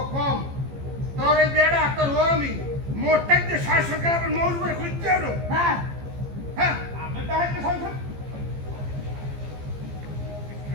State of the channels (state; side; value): late; left; 15 ms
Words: কম তোর এই বেড়া তোর ও আমি মোটটা যে শাসন করে মৌজ করে খুঁজতে এলো হ্যাঁ হ্যাঁ আমি তাহলে সংসার